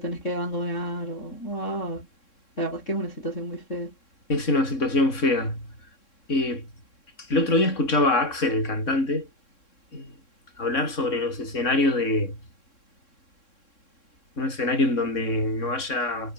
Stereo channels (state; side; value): late; right; 3.6 ms